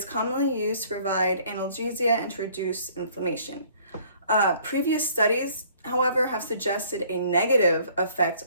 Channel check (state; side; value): inverted; both; correlation -0.58